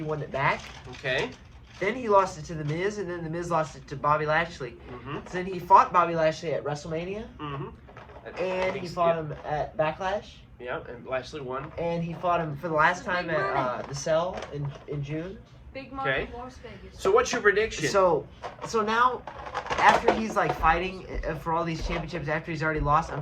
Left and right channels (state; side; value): identical; both; correlation 1.00